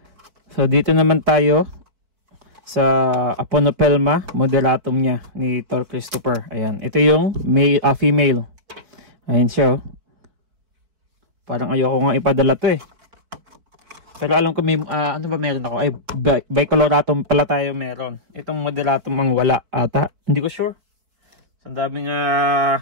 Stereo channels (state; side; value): late; left; 4.7 ms